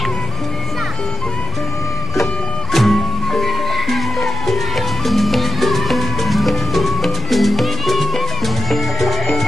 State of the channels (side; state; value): both; normal; correlation 0.92